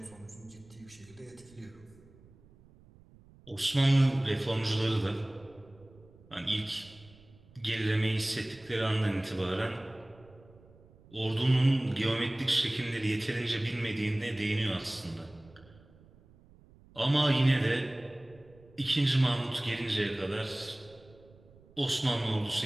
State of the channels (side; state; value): right; noise; rumble, 26 dB below the sound